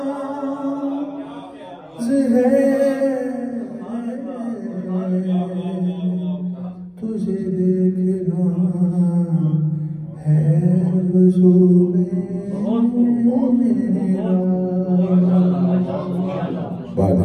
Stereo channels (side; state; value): both; identical; correlation 1.00